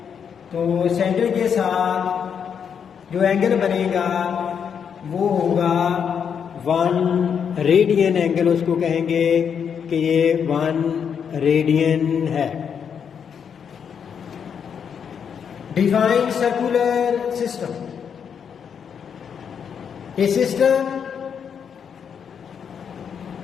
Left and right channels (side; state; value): right; quieter; 7.3 dB